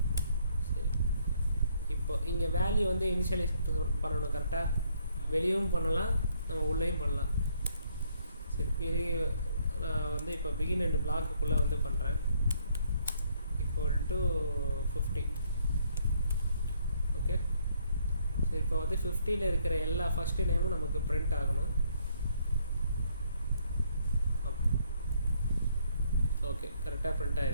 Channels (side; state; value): both; inverted; correlation -0.68